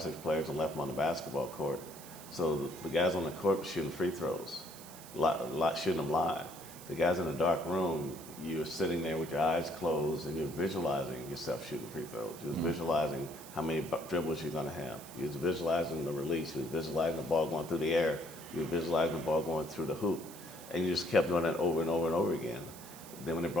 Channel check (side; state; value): right; noise; hiss, 16 dB below the sound